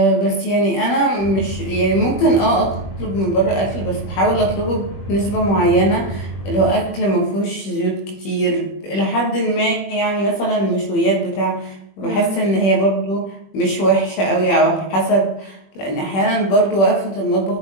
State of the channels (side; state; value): right; late; 21 ms